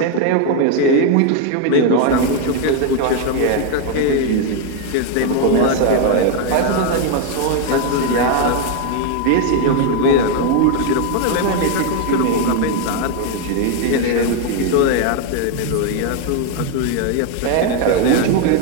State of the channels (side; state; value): both; different; correlation 0.01